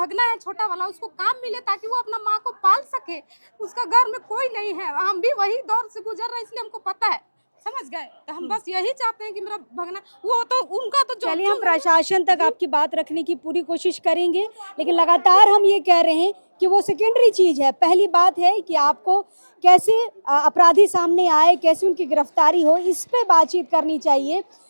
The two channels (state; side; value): inverted; both; correlation -1.00